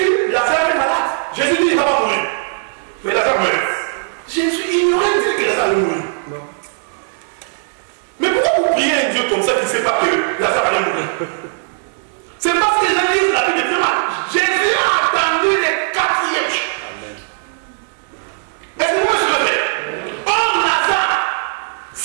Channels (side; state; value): left; silent; digital silence